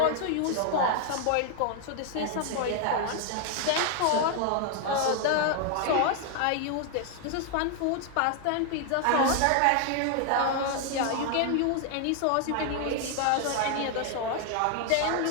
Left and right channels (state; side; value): different; both; correlation 0.00